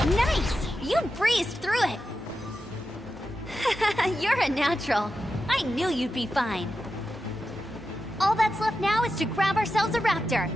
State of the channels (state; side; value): normal; both; correlation 0.90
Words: Nice! You breezed through it! You're a natural. I knew you'd be fine. All that's left now is to grab ourselves a raptor.